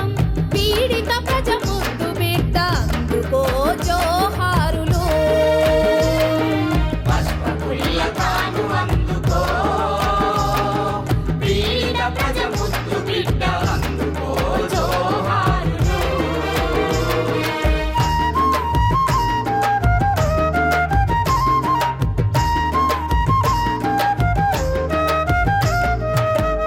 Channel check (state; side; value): identical; both; correlation 1.00